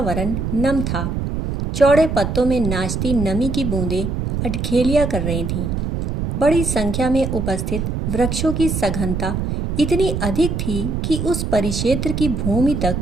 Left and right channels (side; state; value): right; noise; rumble, 2 dB below the sound